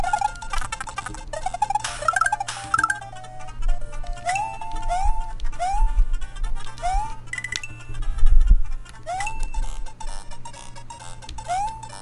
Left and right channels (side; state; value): both; identical; correlation 1.00